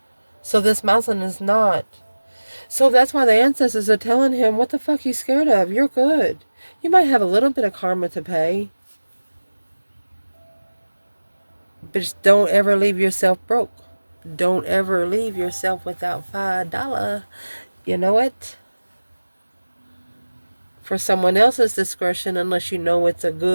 So this mountain is not. So that's why the ancestors are telling him, what the fuck are you scared of? You're good. You might have a little bit of karma to pay. But just don't ever leave yourself broke. Don't ever leave yourself without $5. You know it? For someone else's discretion, unless you know it's a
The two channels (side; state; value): both; inverted; correlation -1.00